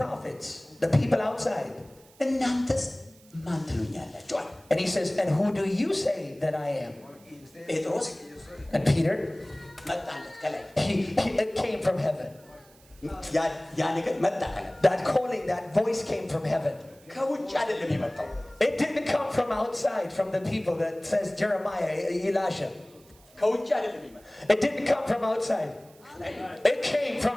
the people outside እናንተስ ማን ትሉኛላችሁ አለ። And he says, and who do you say that I am? Y ustedes Petros. dicen que yo soy. And Peter, መጣለት ከላይ it came from heaven. ያ ነገር መጣ ከላይ That calling, that voice came from heaven. ከውጭ አይደለም የመጣው It didn't come from outside, from the people that says Jeremiah, Elisha. ከውጭ አይደለም የመጣው It didn't come from outside. It came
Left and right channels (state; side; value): noise; right; hiss, 27 dB below the sound